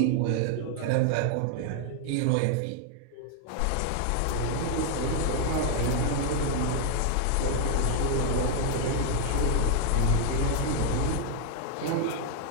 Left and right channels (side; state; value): both; different; correlation 0.00